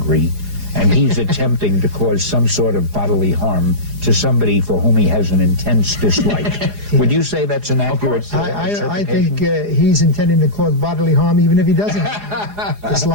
and he's attempting to cause some sort of bodily harm to somebody for whom he has an intense dislike. Would you say that's an accurate I think he's intending to cause bodily harm even if he doesn't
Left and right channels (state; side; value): late; left; 4.9 ms